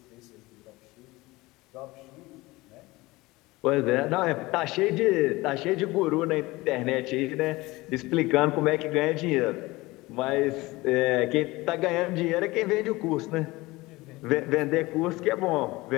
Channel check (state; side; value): quieter; right; 20.9 dB